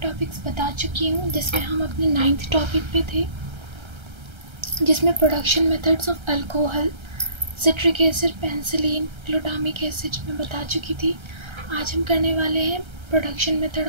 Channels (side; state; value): left; late; 1.3 ms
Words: बता चुकी हूँ, जिसमें हम अपने 9th टॉपिक पे थे, जिसमें production methods of alcohol, citric acid, penicillin, glutamic acid में बता चुकी थी। आज हम करने वाले हैं प्रोडक्शन